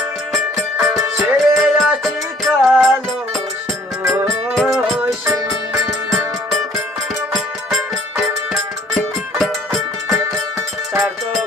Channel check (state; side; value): normal; both; correlation 0.57